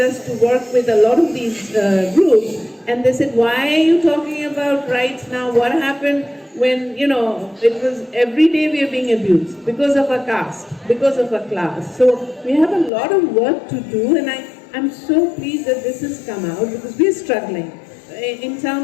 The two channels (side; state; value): right; drops out; at 12.9 s